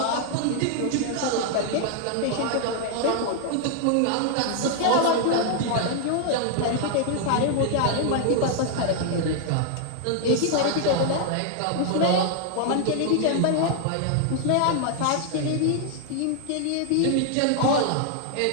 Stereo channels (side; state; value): both; different; correlation 0.00